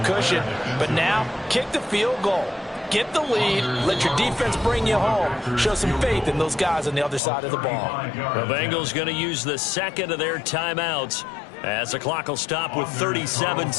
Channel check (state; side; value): drops out; right; at 7.2 s